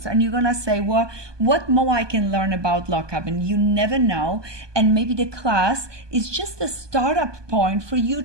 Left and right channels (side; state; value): left; late; 1.2 ms